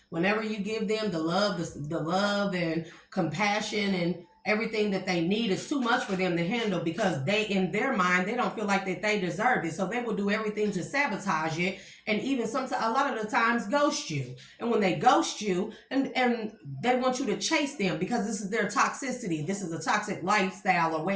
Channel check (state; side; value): identical; both; correlation 1.00